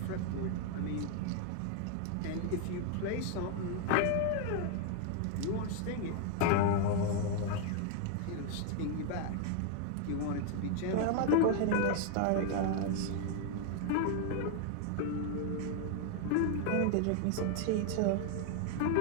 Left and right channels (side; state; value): both; different; correlation 0.00